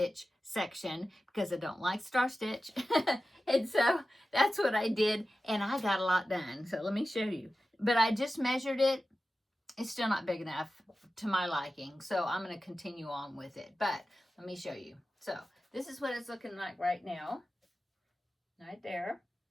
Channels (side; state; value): both; normal; correlation 0.94